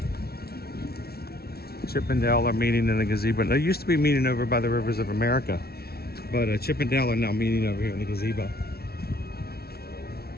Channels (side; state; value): right; late; 0.45 ms